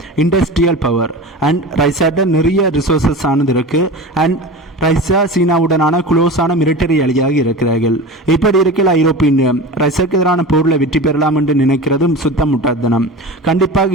இண்டஸ்ட்ரியல் பவர் அண்ட் ரஷ்யாட்ட நிறைய ரிசோர்சஸ் ஆனது இருக்கு அண்ட் ரஷ்யா சீனாவுடனான குளோஸான மிலிட்டரி அலியாக இருக்கிறார்கள். இப்படி இருக்கையில் ஐரோப்பிய ரஷ்யாவுக்கு எதிரான போரில் வெற்றி பெறலாம் என்று நினைக்கிறதும் சுத்தம் முட்டாள்தனம். கண்டிப்பாக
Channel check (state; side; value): normal; both; correlation 0.31